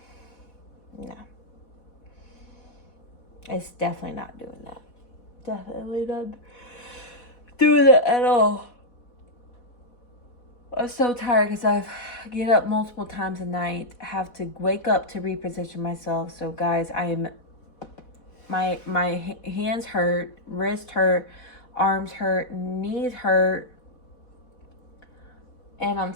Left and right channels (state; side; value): late; right; 4.1 ms